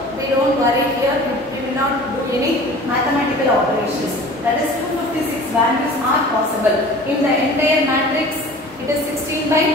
we don't worry here. We will not do any mathematical operations. That is 256 values are possible. In the entire matrix, it is 16 by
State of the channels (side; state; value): both; normal; correlation 0.43